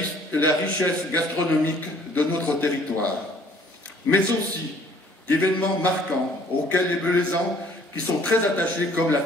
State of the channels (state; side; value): normal; both; correlation 0.58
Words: la richesse gastronomique de notre territoire, mais aussi d'événements marquants auxquels les Belaisans, qui sont très attachés, comme la